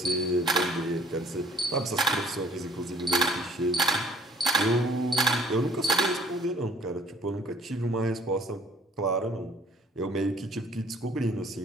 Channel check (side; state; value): both; normal; correlation 0.57